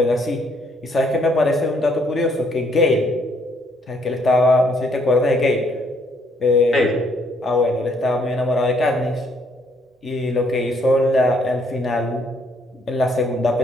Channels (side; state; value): both; normal; correlation 0.68